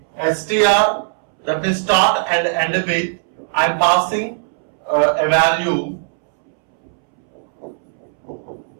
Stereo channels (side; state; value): left; silent; 67 dB below the other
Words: str, that means start and end with, I am passing a value